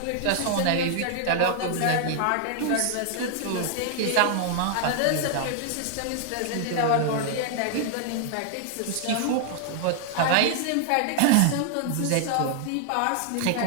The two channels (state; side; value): different; both; correlation 0.00